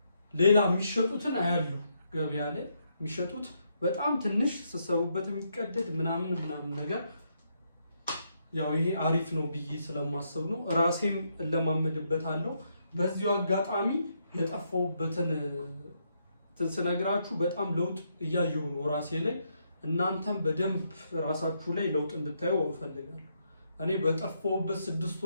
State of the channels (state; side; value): inverted; both; correlation -0.77